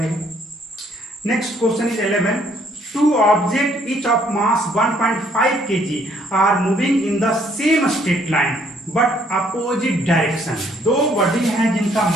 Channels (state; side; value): normal; both; correlation 0.65